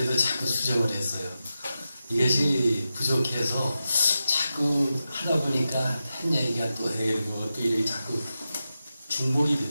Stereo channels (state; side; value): inverted; both; correlation -0.91